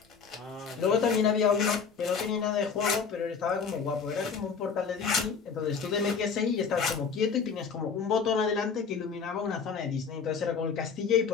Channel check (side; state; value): right; quieter; 5.8 dB